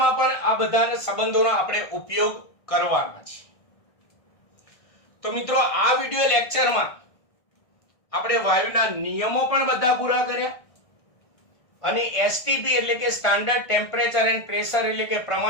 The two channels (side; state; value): right; late; 1.6 ms